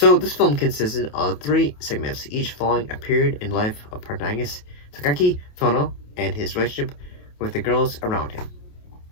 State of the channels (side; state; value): right; late; 28 ms